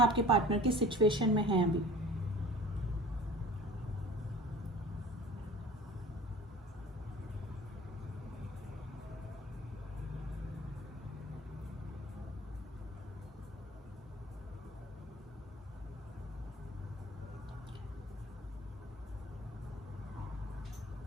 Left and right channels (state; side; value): normal; both; correlation 0.43